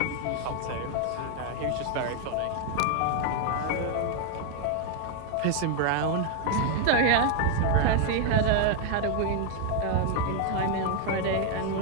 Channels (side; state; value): both; different; correlation 0.00